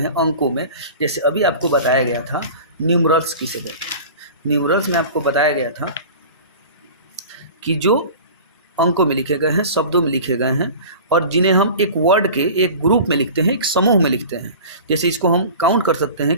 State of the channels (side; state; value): both; inverted; correlation -0.38